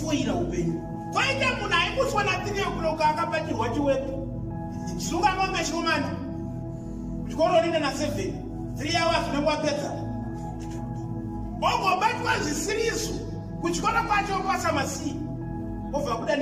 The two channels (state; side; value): identical; both; correlation 1.00